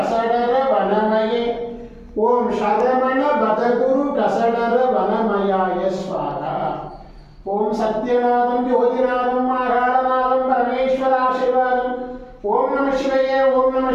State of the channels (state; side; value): identical; both; correlation 1.00